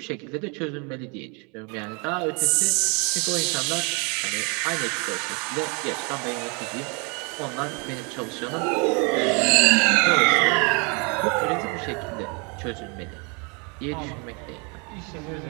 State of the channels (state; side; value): quieter; left; 33.1 dB